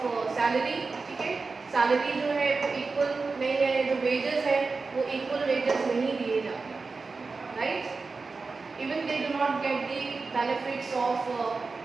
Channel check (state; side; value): quieter; left; 4.2 dB